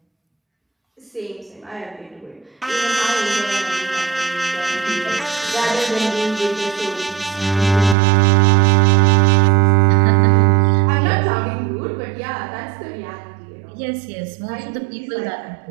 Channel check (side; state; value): left; drops out; at 8.0 s